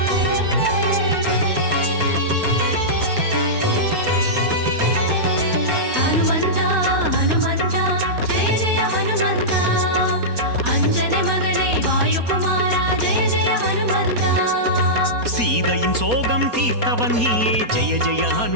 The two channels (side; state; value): left; late; 4.2 ms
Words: சோகம் தீர்த்தவன் நீயே ஜெய ஜெய